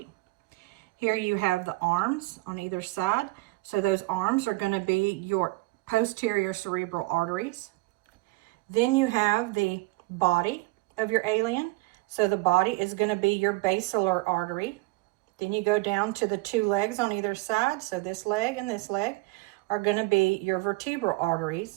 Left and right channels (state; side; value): quieter; left; 21.8 dB